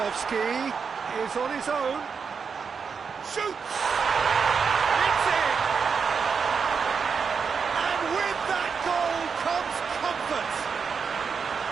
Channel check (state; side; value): quieter; left; 5.9 dB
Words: is on his own. Shoots! It's in! And with that goal comes comfort.